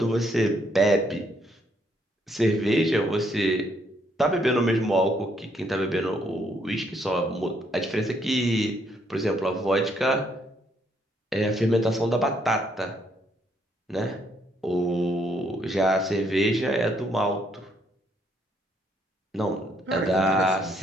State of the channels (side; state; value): both; normal; correlation 0.71